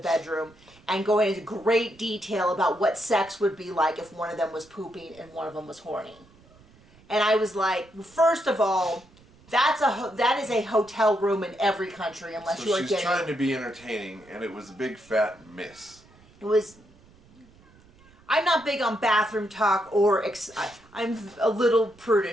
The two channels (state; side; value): noise; right; rumble, 27 dB below the sound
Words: and going into great detail about what sex would be like if one of them was pooping and one of them was horny. And I was like, first of all, that is a hotel room in every country unless you are getting... she's trying to be entertaining, and it was a big fat miss. It was... I'm not big on bathroom talk or... I'm a little